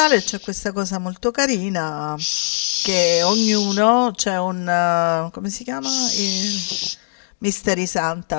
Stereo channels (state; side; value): silent; right; digital silence